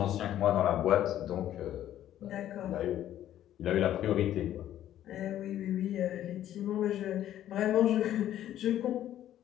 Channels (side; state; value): right; quieter; 12.0 dB